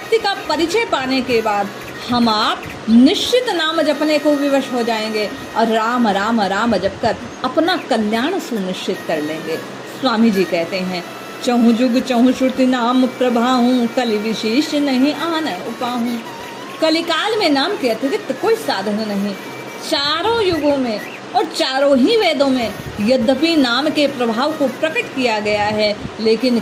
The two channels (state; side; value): identical; both; correlation 1.00